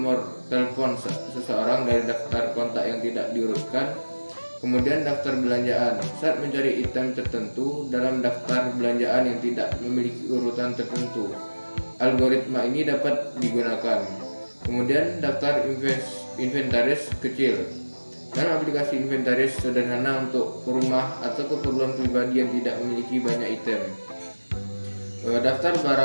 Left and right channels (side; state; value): both; inverted; correlation -1.00